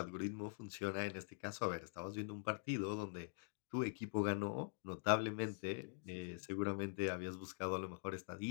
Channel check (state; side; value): silent; right; digital silence